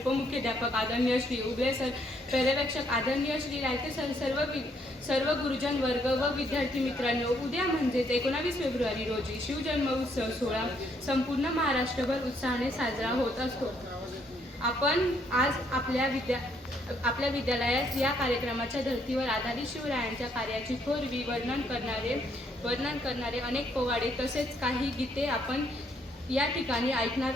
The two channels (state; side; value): normal; both; correlation 0.71